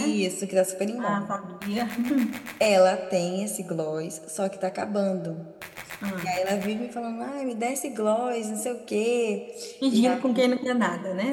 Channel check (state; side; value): identical; both; correlation 1.00